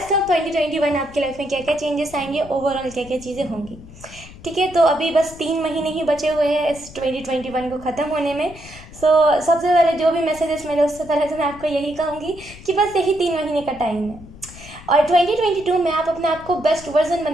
ऑफ 2021 आपकी लाइफ में क्या क्या चेंजेस आएंगे, ओवरऑल क्या क्या चीज़ें होंगी। ठीक है, तो अभी बस 3 महीने ही बचे हुए हैं इस 2021 को ख़त्म होने में। सबसे पहले जो भी मैसेजेस मिले उससे पहले तो मैं आपको यही कहूँगी कि बस यही 3 महीने का टाइम है और 2022 में आप अपने आप को बेस्ट वर्जन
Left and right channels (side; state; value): left; noise; rumble, 18 dB below the sound